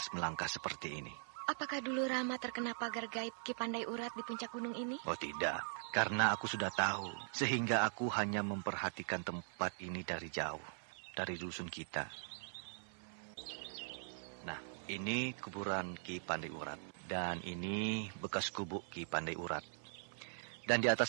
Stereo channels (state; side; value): silent; left; 50 dB below the other